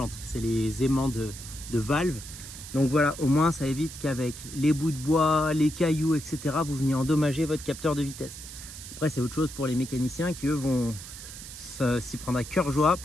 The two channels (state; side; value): noise; right; hiss, 13 dB below the sound